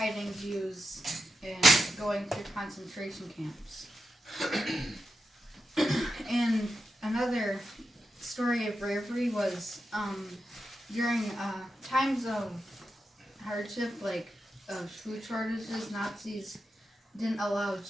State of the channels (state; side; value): normal; both; correlation 0.88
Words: Jews and going through concentration camps. And another story of bravery was during times of hardship, like of food shortages, Nazis didn't allow